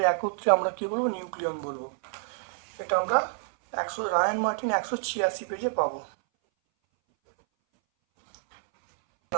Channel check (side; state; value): left; silent; 59 dB below the other